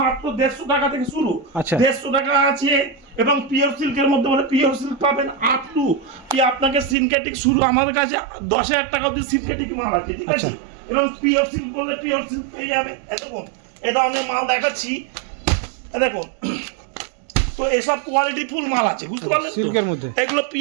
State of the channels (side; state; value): left; drops out; at 7.0 s